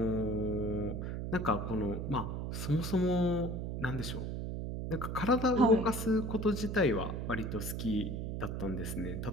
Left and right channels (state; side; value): noise; right; hum, 4 dB below the sound